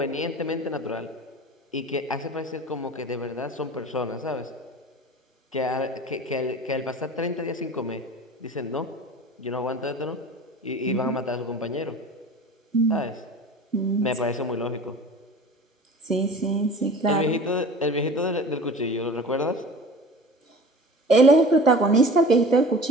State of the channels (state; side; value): normal; both; correlation 0.40